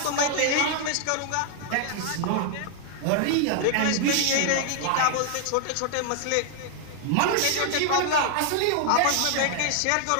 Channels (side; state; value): both; different; correlation 0.00